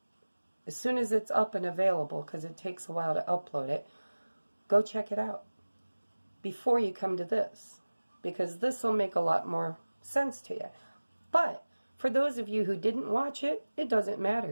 as soon as it's up and available, because it takes a while to upload it, go check it out before you come to this, because this will make a lot more sense to you. But for those of you who didn't watch it, it doesn't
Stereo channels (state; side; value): inverted; both; correlation -1.00